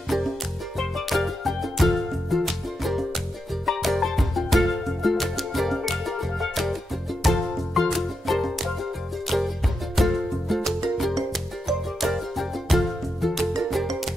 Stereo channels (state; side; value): normal; both; correlation 0.86